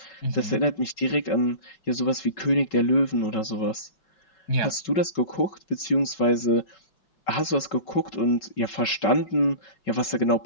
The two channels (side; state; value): right; late; 5.3 ms